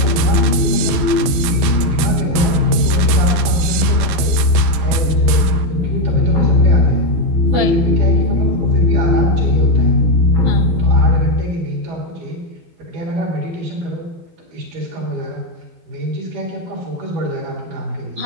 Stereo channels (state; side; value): late; left; 13 ms